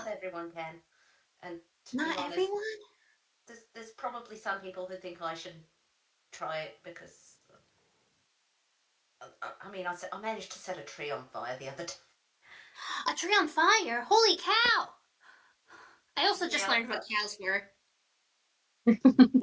everyone can. And to be Not honest, everyone? there's probably some people who think I should try it because I mean I managed to set a tree on fire the other day. A tree on fire? Holy cow! I also just Yeah, learned what cows were.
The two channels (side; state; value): both; identical; correlation 1.00